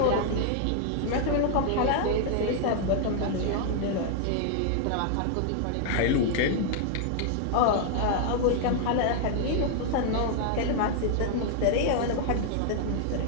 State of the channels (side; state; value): both; different; correlation -0.01